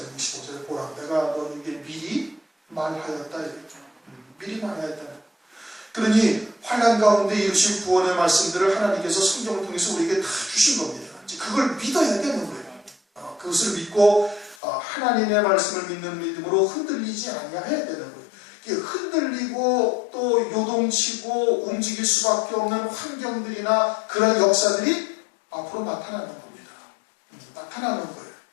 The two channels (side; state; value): right; drops out; at 14.6 s